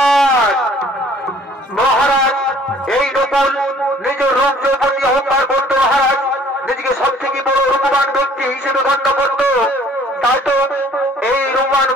মহারাজ এই নকুল নিজের রূপ যৌবনী অহংকার করতো মহারাজ, নিজেকে সব থেকে বড় রূপবান ব্যক্তি হিসেবে গণ্য করত। তাই তো এই রূপবান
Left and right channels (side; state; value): both; normal; correlation 0.56